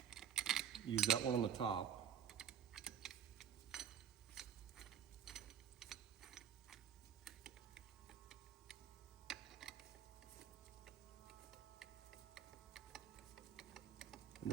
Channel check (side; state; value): left; quieter; 8.6 dB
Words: Use that one on the top. And